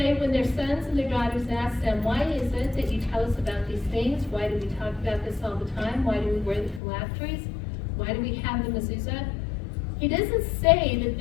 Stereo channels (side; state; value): right; drops out; at 6.8 s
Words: when their sons and their daughters ask them, why is it that you tell us about these things? Why do we talk about this all the time? Why do we wear the phylacteries? Why do we have the mezuzah? He doesn't say that